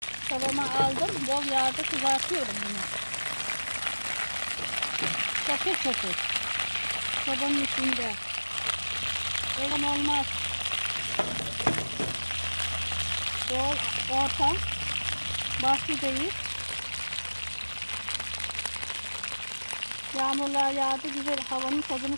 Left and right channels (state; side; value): inverted; both; correlation -1.00